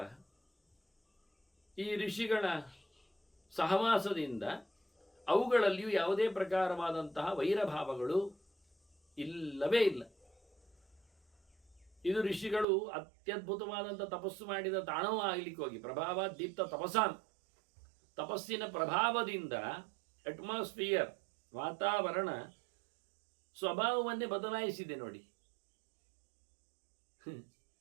ಈ ಋಷಿಗಳ ಸಹವಾಸದಿಂದ ಅವುಗಳಲ್ಲಿಯೂ ಯಾವುದೇ ಪ್ರಕಾರವಾದಂತಹ ವೈರಭಾವಗಳು ಇಲ್ಲವೇ ಇಲ್ಲ. ಇದು ಋಷಿಗಳು ಅತ್ಯದ್ಭುತವಾದಂಥ ತಪಸ್ಸು ಮಾಡಿದ ತಾಣವೂ ಆಗಲಿಕ್ಕೆ ಹೋಗಿ ಪ್ರಭಾವ ದೀಪ್ತ ತಪಸಾನ್, ತಪಸ್ಸಿನ ಪ್ರಭಾವದಿಂದ ಅಟ್ಮಾಸ್ಫಿಯರ್, ವಾತಾವರಣ ಸ್ವಭಾವವನ್ನೇ ಬದಲಾಯಿಸಿದೆ ನೋಡಿ.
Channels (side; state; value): left; drops out; at 12.7 s